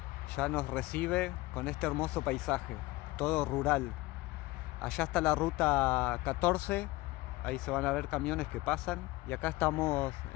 ya nos recibe con este hermoso paisaje, todo rural. Allá está la ruta 14, ahí se van a ver camiones que pasan. Y acá estamos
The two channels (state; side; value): quieter; right; 20.4 dB